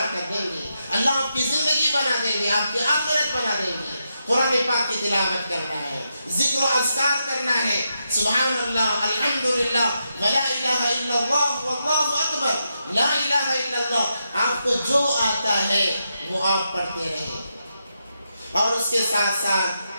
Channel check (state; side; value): inverted; both; correlation -0.84